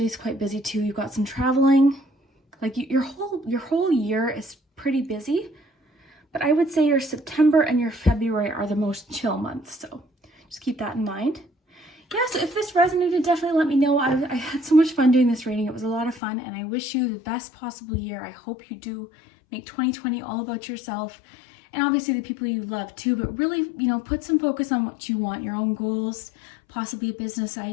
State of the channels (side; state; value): right; drops out; at 16.2 s